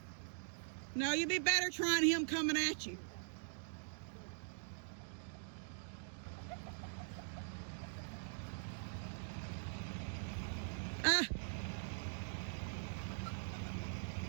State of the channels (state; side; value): silent; left; digital silence